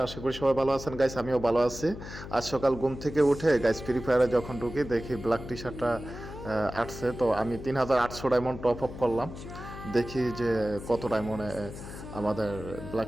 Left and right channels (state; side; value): noise; left; hum, 11 dB below the sound